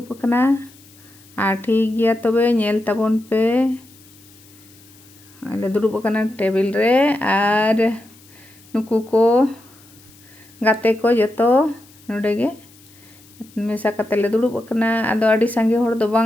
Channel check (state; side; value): noise; left; hiss, 26 dB below the sound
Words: कना और ठीक गया तबे नेल ताबन पे आले दुड़ुब कना टेबिल रे और नुकु को गाते को जतो नोडे गे मेसा कते ले दुड़ुब कना आदो आडी सांगे होड़ दो